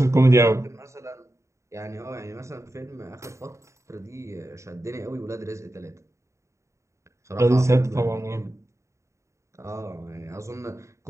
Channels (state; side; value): late; left; 0.14 ms